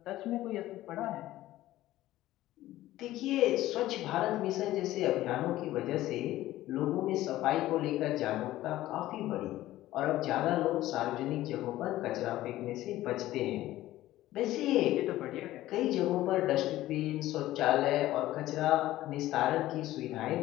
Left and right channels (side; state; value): right; quieter; 15.4 dB